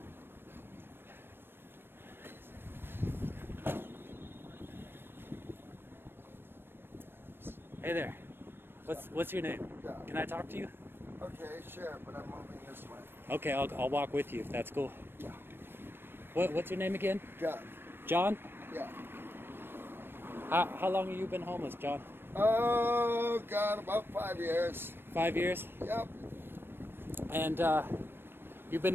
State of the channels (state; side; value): late; left; 0.10 ms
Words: Hey there. What's your name? Yeah. Can I talk to you? Okay, sure, but I'm moving this way. Okay, I'll walk with you if that's cool. Yeah. What's your name again? John. John? Yeah. How long have you been homeless, John? Oh, God, about 5 years. 5 years? Yep. And you've